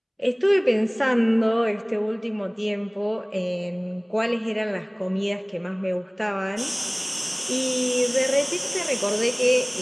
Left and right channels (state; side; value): identical; both; correlation 1.00